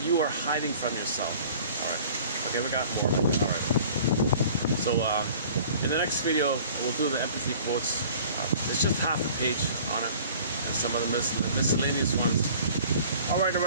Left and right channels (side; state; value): both; inverted; correlation -0.48